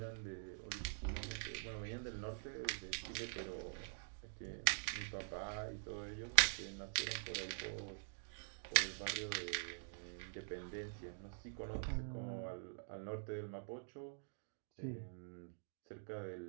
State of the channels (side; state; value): left; silent; digital silence